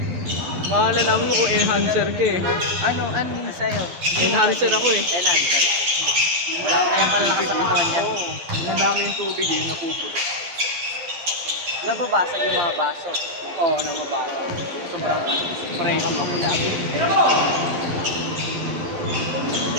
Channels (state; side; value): late; left; 12 ms